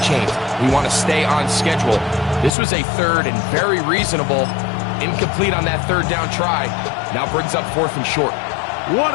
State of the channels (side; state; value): right; drops out; at 2.5 s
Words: chains. We want to stay on schedule. This was a 3rd and very reasonable. Incomplete on that 3rd down try. Now brings up 4th and short. What